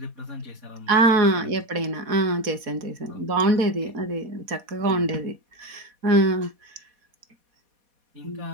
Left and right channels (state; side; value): late; left; 4.2 ms